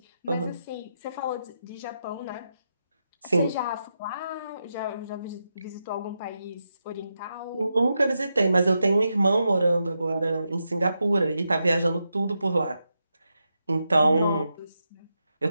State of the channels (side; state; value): both; inverted; correlation -0.86